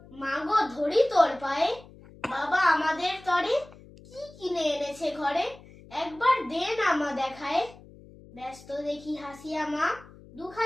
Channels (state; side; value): noise; left; hum, 21 dB below the sound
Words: মাগো ধরি তোর পায়ে। বাবা আমাদের তরে কি কিনে এনেছে ঘরে, একবার দে না মা দেখায়। ব্যস্ত দেখি হাসিয়া মা